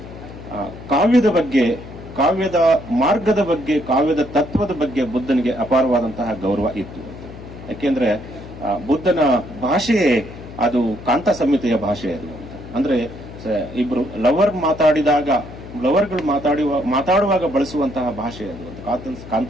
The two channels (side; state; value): left; noise; hum, 14 dB below the sound